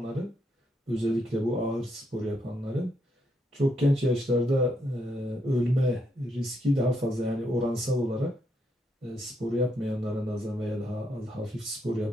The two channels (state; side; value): normal; both; correlation 0.77